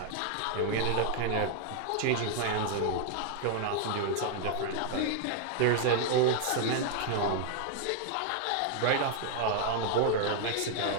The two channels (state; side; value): different; both; correlation 0.00